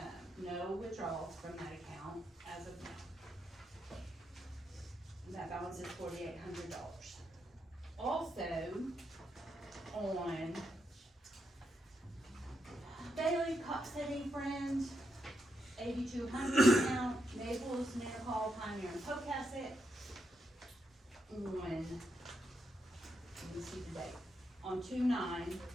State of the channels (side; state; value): both; normal; correlation 0.82